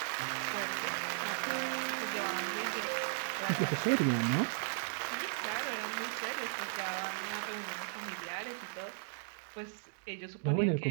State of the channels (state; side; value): silent; left; digital silence